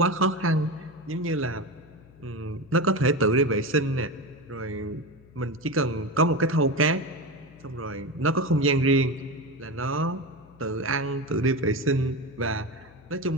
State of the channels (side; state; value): left; noise; hum, 25 dB below the sound